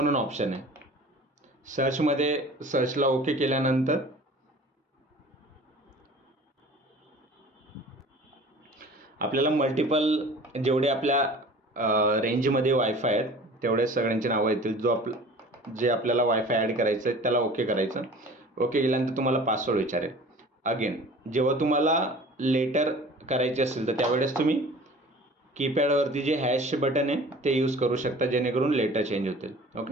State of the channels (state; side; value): normal; both; correlation 0.44